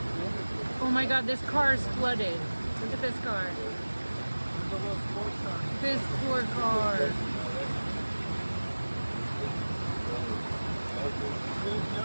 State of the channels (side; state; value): both; inverted; correlation -1.00